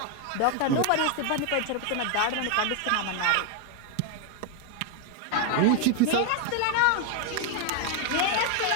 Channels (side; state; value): both; different; correlation 0.01